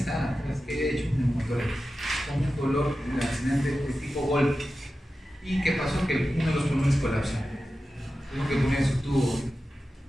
está, es que haya hecho un neumotórax, con un dolor accidente de tipo golpe. ¿Y qué pasó? Que uno de los pulmones colapsó. Tuvo que poner su tubo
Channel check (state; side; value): normal; both; correlation 0.93